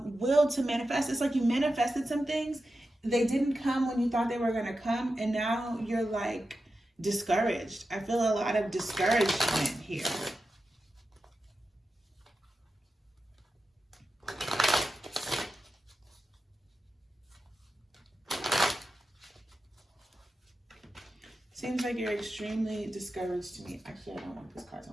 will to manifest. It's like you manifested some things. They didn't come when you thought they were going to come. And now you're like discouraged. I feel a lot of discouragement here. Seems like you're extremely discouraged to me. Actually, I don't want these cards. I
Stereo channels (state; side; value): normal; both; correlation 0.91